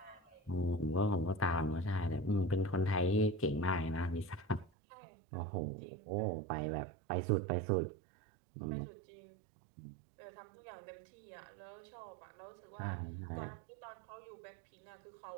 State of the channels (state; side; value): drops out; left; at 4.7 s